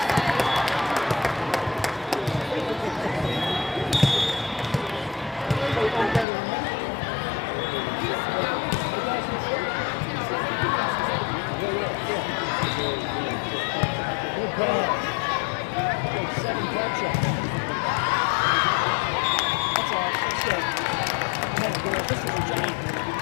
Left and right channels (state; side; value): drops out; right; at 6.2 s